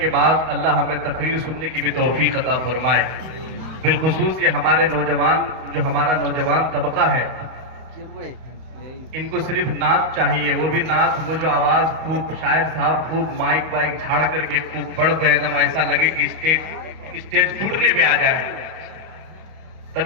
بعد اللہ ہمیں تقریر سننے کی بھی توفیق عطا فرمائے. بالخصوص یہ ہمارے نوجوان، جو ہمارا نوجوان طبقہ ہے، ان کو صرف نعت چاہیے. وہ بھی نعت، وہ جو آواز خوب شاعر صاحب خوب مائک وائک جھاڑ کر کے خوب پڑھ دے، ایک دم ایسا لگے کہ اسٹیج ٹوٹنے پہ آ جائے،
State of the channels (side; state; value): left; late; 31 ms